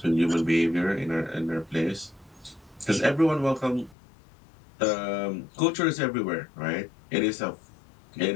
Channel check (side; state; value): right; drops out; at 4.0 s